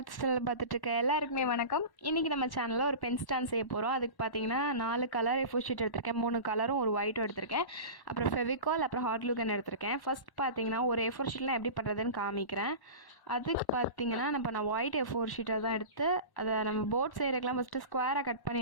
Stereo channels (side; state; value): right; late; 1.1 ms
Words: channel பார்த்துட்டு இருக்க எல்லாருக்குமே வணக்கம். இன்றைக்கி நம்ம சேனலில் ஒரு பென் ஸ்டாண்ட் செய்ய போகிறோம். அதுக்கு பார்த்தீங்கன்னா 4 கலர் A4 ஷீட் எடுத்திருக்கேன், 3 கலரும் ஒரு ஒயிட்டும் எடுத்திருக்கேன். அப்புறம் ஃபெவிகால், அப்புறம் ஹாட் க்ளூ கன் எடுத்திருக்கேன். ஃபர்ஸ்ட் பார்த்தீங்கன்னா ஒரு A4 ஷீட்லாம் எப்படி பண்ணுறதுன்னு காமிக்கிறேன். அதுக்கு பார்த்தீங்கன்னா நான் ஒயிட் A4 ஷீட்டை தான் எடுத்து அதை நம்ம போர்ட் செய்கிறதுக்கெலாம் ஃபஸ்ட்டு ஸ்கொயராக கட் பண்ணி